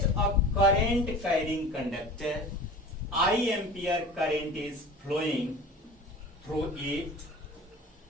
a current carrying conductor, I ampere current is flowing through it.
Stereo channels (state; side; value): normal; both; correlation 0.38